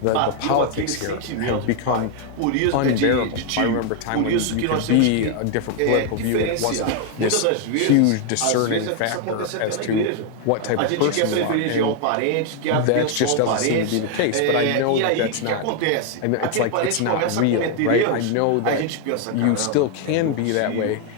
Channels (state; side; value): different; both; correlation 0.00